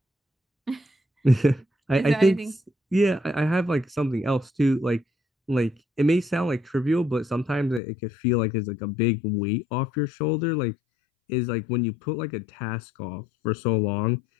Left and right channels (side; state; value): right; drops out; at 7.8 s